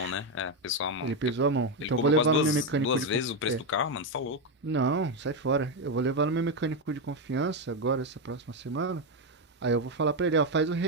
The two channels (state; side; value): normal; both; correlation 0.07